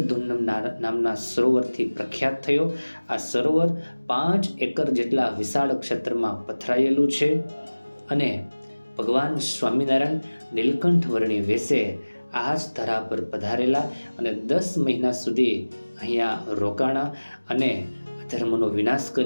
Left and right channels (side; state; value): both; inverted; correlation -1.00